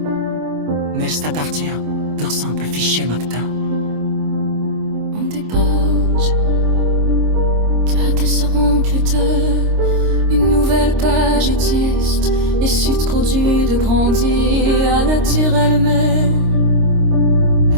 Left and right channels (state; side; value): late; left; 26 ms